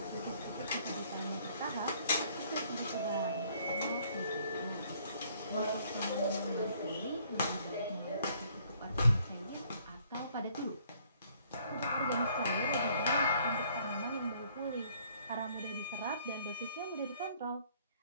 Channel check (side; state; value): both; inverted; correlation -0.62